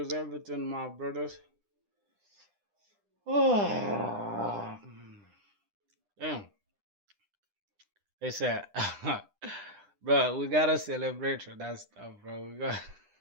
everything, my brothers? Oh, damn. They said, bro, we gotta celebrate for that stuff, bro. We got.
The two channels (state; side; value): late; left; 9.9 ms